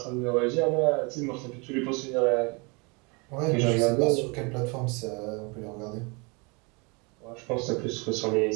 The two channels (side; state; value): left; quieter; 30.0 dB